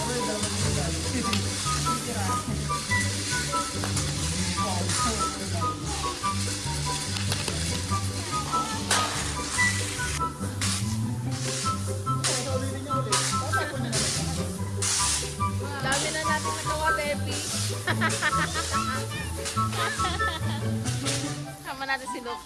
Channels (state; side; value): identical; both; correlation 1.00